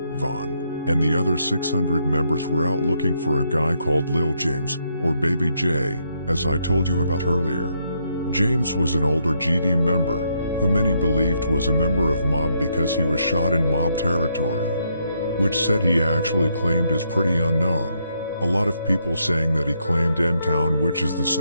Von, and the other 600 members were out looking for a guy called Lil James, or Baby J, as I told you about earlier. James was an older GD member, who many believed was a member of Mob because he was shot in Mob territory. Which said he actually claimed is pretty unknown. A lot of people saying that he claimed M-Town, which is the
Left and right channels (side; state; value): both; inverted; correlation -0.76